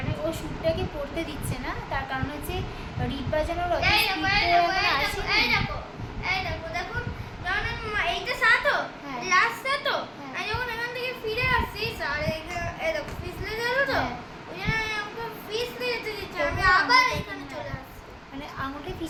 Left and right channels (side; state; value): both; identical; correlation 1.00